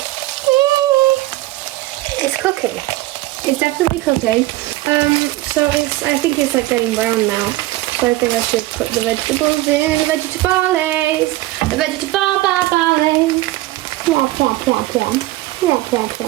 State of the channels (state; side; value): quieter; left; 17.9 dB